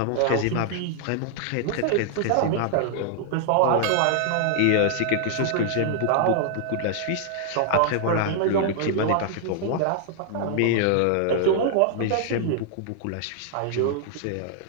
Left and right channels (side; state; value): both; different; correlation -0.01